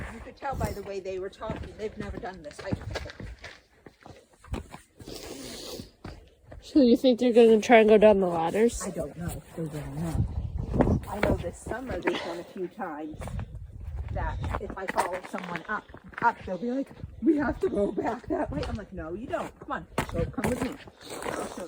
you could tell by the way they were talking. They've never done this hike before. So you think they're going to try and go down the ladders? I don't know. They don't know. I know this summer they've done a few times that if I follow someone up, they'll be like, we have to go back that way. I'm like, no, you don't. Come on, come with me. I'll show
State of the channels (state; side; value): identical; both; correlation 1.00